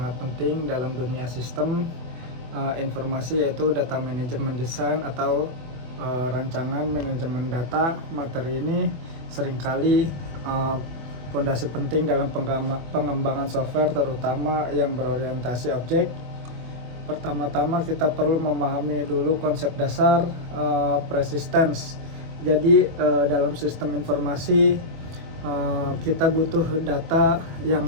penting dalam dunia sistem informasi, yaitu data manajemen design atau rancangan manajemen data. Materi ini seringkali fondasi penting dalam pengembangan software, terutama yang berorientasi objek. Pertama-tama kita perlu memahami dulu konsep dasar persistence. Jadi dalam sistem informasi kita butuh data yang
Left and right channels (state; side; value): late; left; 24 ms